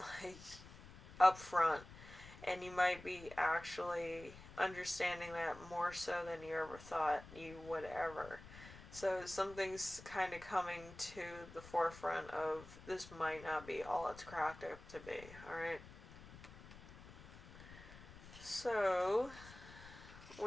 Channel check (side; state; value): left; noise; rumble, 16 dB below the sound